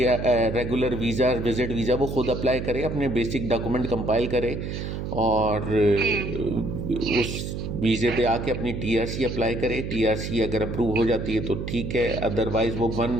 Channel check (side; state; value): right; noise; hum, 5 dB below the sound